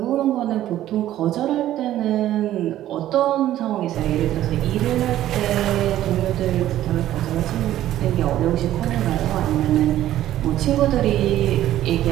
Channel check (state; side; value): quieter; left; 13.1 dB